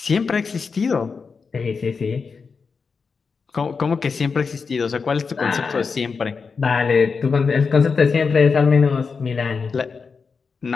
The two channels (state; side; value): quieter; right; 5.1 dB